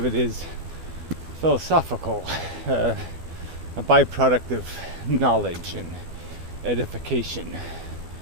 it is philosophical, a byproduct of knowledge and edification.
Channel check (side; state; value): left; late; 12 ms